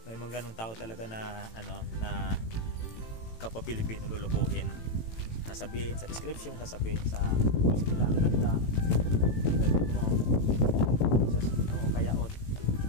may mga ganung tao talaga na na kapwa-Pilipino lulukuhin. Sasabihin sa description, sasabihin sa sila ang ganda mo, kaya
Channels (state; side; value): late; right; 18 ms